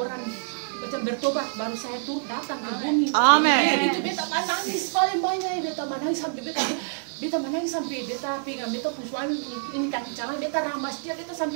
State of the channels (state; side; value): silent; left; digital silence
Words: macam bertobat baru saya tuh datang ke bumi. Amin. Itu beta menangis paling banyak, beta menangis sampai beta pegang beta pun suami ini kaki calon, beta ramas dia, beta